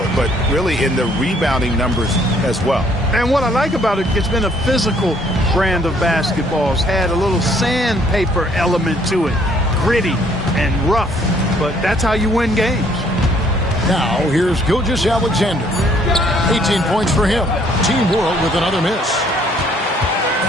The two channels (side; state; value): both; normal; correlation 0.63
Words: but really in the rebounding numbers as well. And what I like about it, it's been a physical brand of basketball. It's had a little sandpaper element to it. Gritty and rough, but that's how you win games. Now, here's Gilgeous-Alexander. 18 points for him. Team World with another miss.